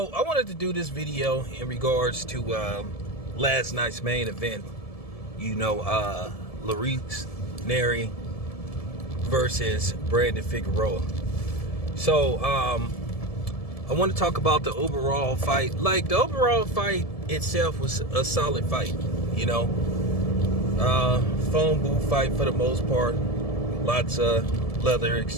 I wanted to do this video in regards to last night's main event. You know, Nery versus Brandon Figueroa. So, I want to talk about the overall fight. Like, the overall fight itself was a solid fight, you know. Phone booth fight for the most part. Lots of leather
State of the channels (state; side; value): late; right; 1.7 ms